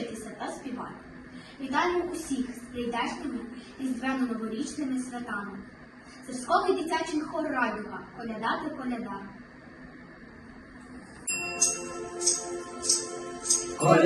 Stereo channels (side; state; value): both; identical; correlation 1.00